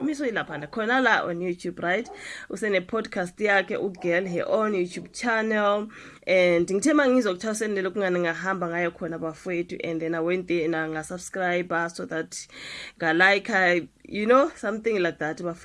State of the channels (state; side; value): identical; both; correlation 1.00